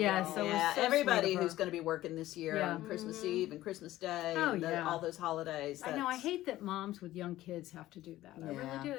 y'all. so it was Yeah, so everybody sweet of her. who's going to be working this year Yeah. on Christmas Mhm. Eve and Christmas Day, Oh, and yeah. all those holidays. I know. I that's- hate that moms with young kids have to do that. I Yeah. really do.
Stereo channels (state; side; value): quieter; right; 15.3 dB